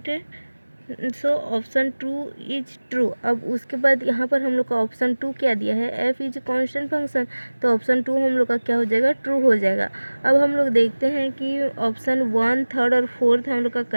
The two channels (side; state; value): both; inverted; correlation -1.00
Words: so option 2 is true. अब उसके बाद यहाँ पर हम लोग का ऑप्शन 2 क्या दिया है, f इज कांस्टेंट फंक्शन, तो ऑप्शन 2 हम लोग का क्या हो जाएगा, ट्रू हो जाएगा। अब हम लोग देखते हैं कि ऑप्शन 1, 3 और 4 हम लोग का